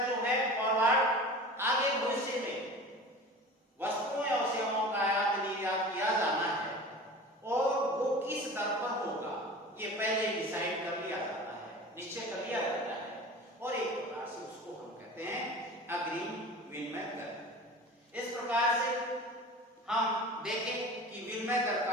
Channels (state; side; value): normal; both; correlation 0.37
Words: जो है फॉरवर्ड, आगे भविष्य में वस्तुओं या सेवाओं का आयात निर्यात किया जाना है और वो किस दर पर होगा ये पहले डिसाइड कर लिया जाता है, निश्चय कर लिया जाता है और एक प्रकार से उसको हम कहते हैं अग्रिम विनिमय दर। इस प्रकार से हम देखें कि विनिमय दर